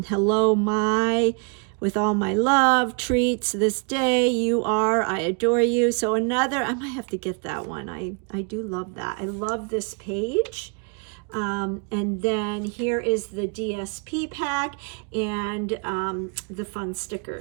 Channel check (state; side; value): quieter; left; 35.6 dB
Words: Hello, my, with all my love, treats this day, you are, I adore you. So another, I might have to get that one. I do love that. I love this page. And then here is the DSP pack and the fun